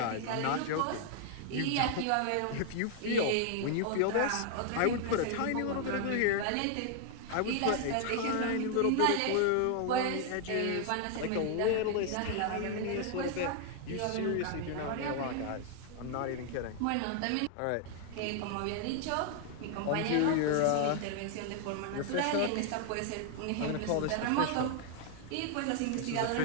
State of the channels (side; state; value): both; different; correlation 0.00